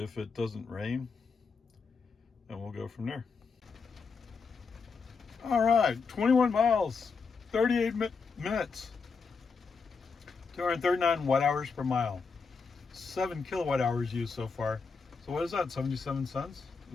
it doesn't rain, and we'll go from there. All right, 21 miles, 38 minutes, 239 watt hours per mile, 7 kilowatt hours used so far. So what is that, 77 cents?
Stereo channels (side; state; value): right; quieter; 5.0 dB